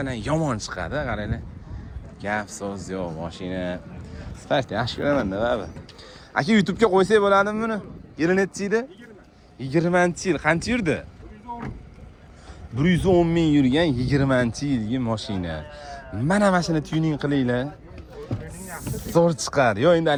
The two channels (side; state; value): both; identical; correlation 1.00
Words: yomon chiqadi, qaranglar. Gap so'z yo'q, mashina. Spark yaxshi ko'raman-da, baba. Aka, YouTube'ga qo'ysak bo'ladimi buni? Yili necha edi? 20-yil. Qancha yurdi? 110 ming yurgan 20-yilgi mashina. Mana mashina tuning qilinglar. Zo'r chiqadi. Yo, endi